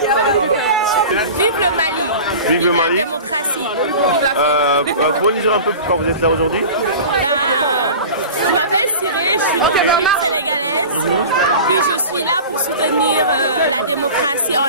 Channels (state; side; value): inverted; both; correlation -0.36